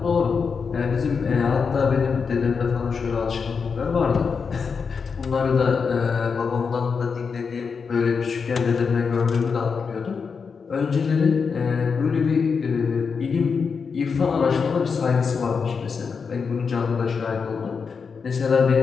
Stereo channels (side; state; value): right; quieter; 5.6 dB